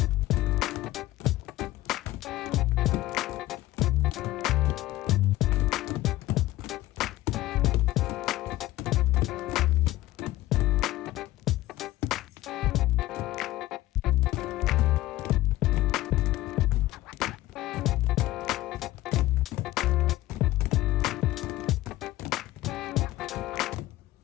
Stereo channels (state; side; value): quieter; right; 16.5 dB